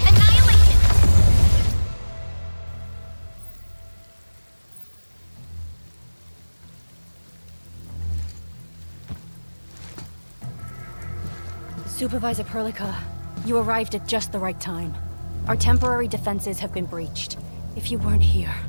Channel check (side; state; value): both; inverted; correlation -1.00